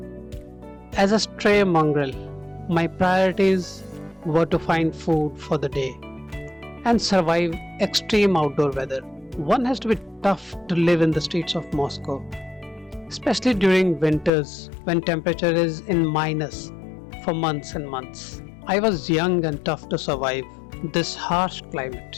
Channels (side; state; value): right; drops out; at 14.3 s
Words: As a stray mongrel, my priorities were to find food for the day and survive extreme outdoor weather. One has to be tough to live in the streets of Moscow, especially during winters when temperature is in minus for months and months. I was young and tough to survive this harsh